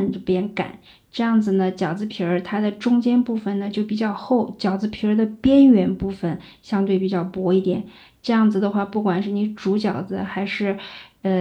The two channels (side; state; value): both; identical; correlation 1.00